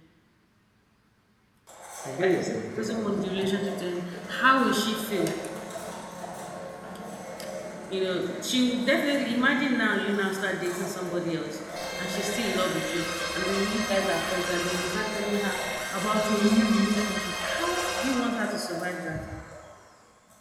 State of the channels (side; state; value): both; identical; correlation 1.00